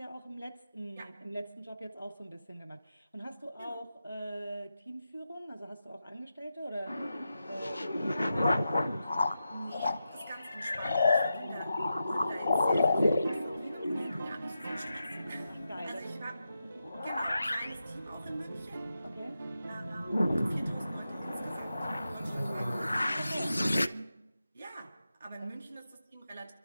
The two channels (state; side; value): inverted; both; correlation -0.89